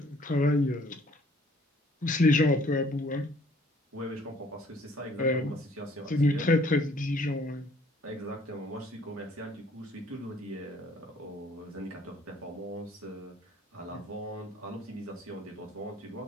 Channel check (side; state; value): both; normal; correlation 0.59